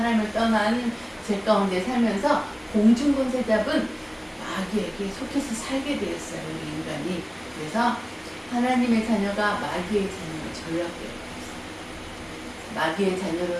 떠난 죄 가운데 살면서 공중권세 잡은 마귀에게 속해서 살게 되었어요. 우리 인간이. 그래서 하나님의 자녀가 마귀의 자녀로 전락되어 있어요. 마귀의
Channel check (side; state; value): both; identical; correlation 1.00